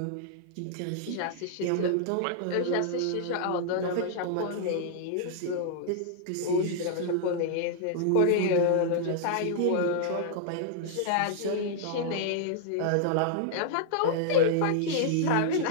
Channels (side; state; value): both; different; correlation -0.01